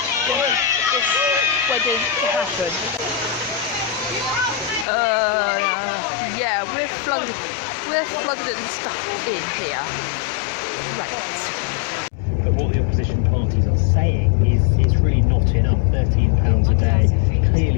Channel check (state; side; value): drops out; right; at 4.9 s